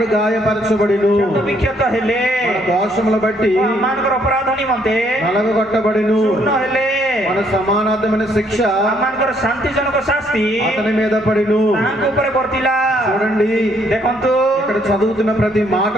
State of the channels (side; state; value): both; normal; correlation 0.68